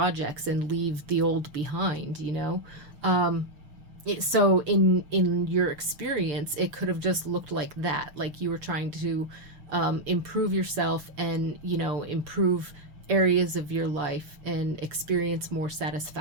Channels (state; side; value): late; left; 6.8 ms